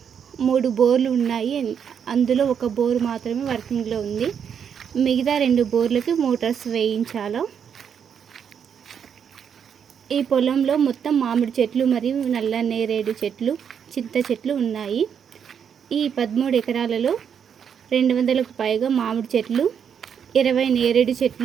3 బోర్లు ఉన్నాయి. అందులో ఒక బోర్ మాత్రమే వర్కింగ్లో ఉంది. మిగతా 2 బోర్లకి మోటార్స్ వేయించాలి. ఈ పొలంలో మొత్తం మామిడి చెట్లు మరియు నల్ల నేరేడు చెట్లు, చింత చెట్లు ఉన్నాయి. ఈ 13 ఎకరాలలో 200కు పైగా మామిడి చెట్లు, 20 నేరేడు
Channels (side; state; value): left; quieter; 7.7 dB